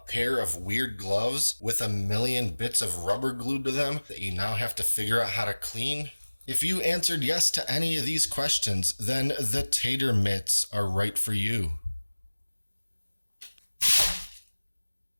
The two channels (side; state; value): both; inverted; correlation -1.00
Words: of weird gloves with a million bits of rubber glued to them that you now have to figure out how to clean? If you answered yes to any of these questions, then the Tater Mitts are right for you.